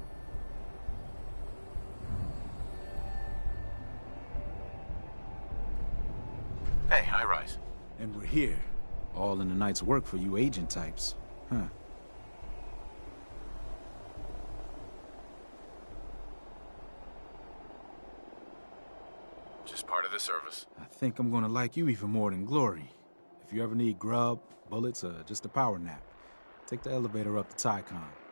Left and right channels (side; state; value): both; inverted; correlation -1.00